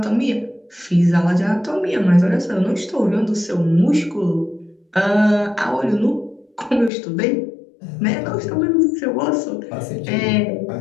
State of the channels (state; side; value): drops out; right; at 6.9 s